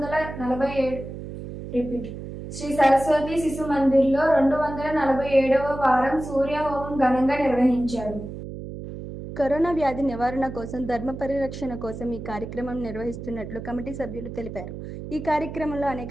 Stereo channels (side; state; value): right; noise; hum, 10 dB below the sound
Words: 247వ వారం సూర్య హోమం ఘనంగా నిర్వహించారు. కరోనా వ్యాధి నివారణ కోసం ధర్మ పరిరక్షణ కోసం ఈ కార్యక్రమం నిర్వహిస్తున్నట్లు కమిటీ సభ్యులు తెలిపారు. ఈ కార్యక్రమంలో